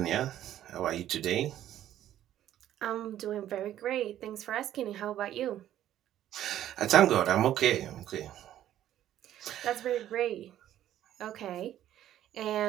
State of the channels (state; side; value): quieter; left; 12.0 dB